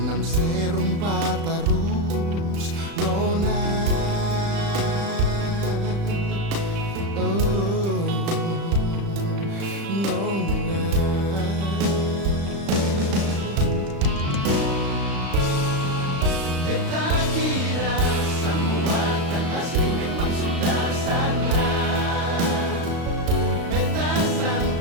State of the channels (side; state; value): left; late; 35 ms